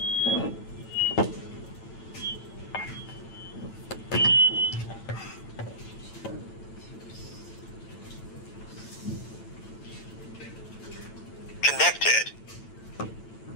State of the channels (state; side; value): late; right; 8.9 ms